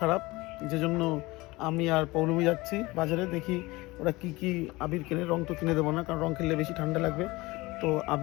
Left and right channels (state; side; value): quieter; right; 21.4 dB